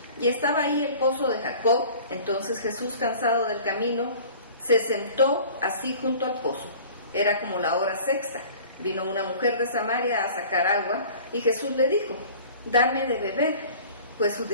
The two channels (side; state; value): both; inverted; correlation -0.45